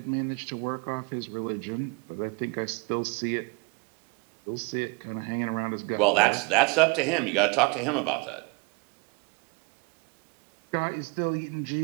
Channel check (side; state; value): left; quieter; 29.7 dB